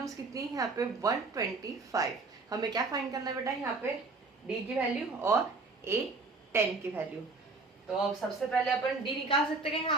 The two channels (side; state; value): left; quieter; 3.8 dB